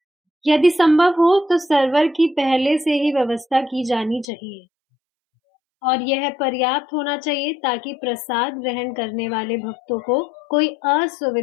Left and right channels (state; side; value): drops out; right; at 4.2 s